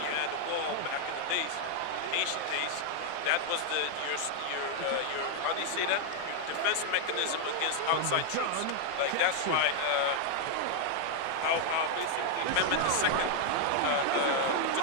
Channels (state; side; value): different; both; correlation 0.00